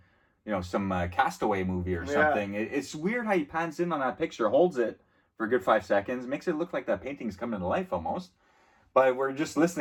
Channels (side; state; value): both; identical; correlation 1.00